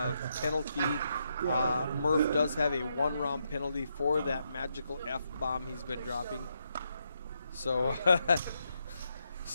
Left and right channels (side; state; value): both; inverted; correlation -0.80